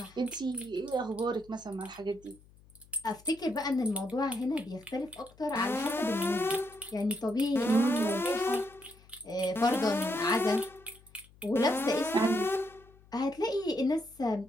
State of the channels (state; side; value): noise; left; hum, 26 dB below the sound